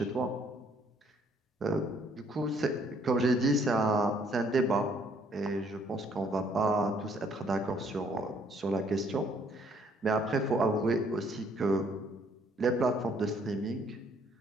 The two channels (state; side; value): normal; both; correlation 0.64